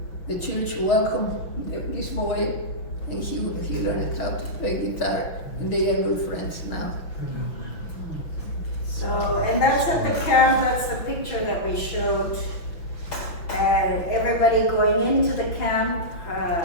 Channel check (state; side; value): late; right; 5.9 ms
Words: the church welcomed this boy, and he learned how to play guitar, and they are good friends now. So, and that's at the camp, that's the picture that we showed. Everybody going into the camp,